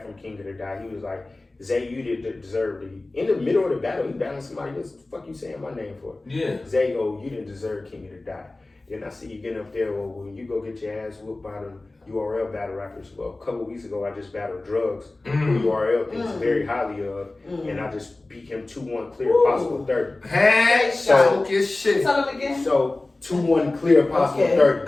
from King of the Dot, he was like, Zay, you didn't deserve it. In the middle of the battle, he battling somebody else. What the fuck you saying my name for? Yeah. Zay, oh, you didn't deserve King of the Dot. Then I see you getting up there, well, when you go get your ass whooped by the URL battle rappers. Well, a couple weeks ago, I just battled Drugs, who URL thinks very highly of, and I just beat him 2-1 clear, possible 30. Hey, talk your shit. Tell him again. So 2-1 clear, possible Okay.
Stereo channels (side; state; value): right; quieter; 3.0 dB